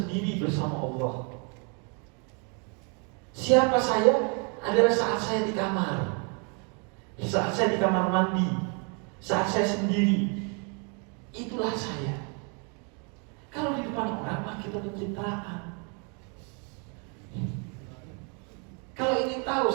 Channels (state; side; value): quieter; left; 36.7 dB